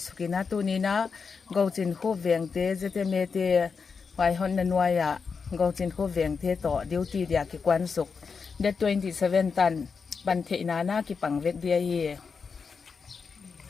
sukina tunina gochin khu vengte ZMA te wai hon na nuaya gochin khu vengte to duty dia ki kwan suk de 27 tan pan the na ki pangvek dia hi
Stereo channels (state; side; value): quieter; right; 5.4 dB